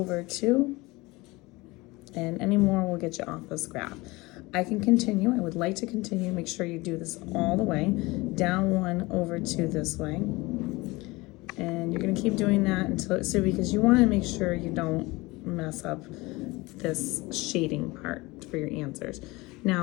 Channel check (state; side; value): quieter; right; 22.4 dB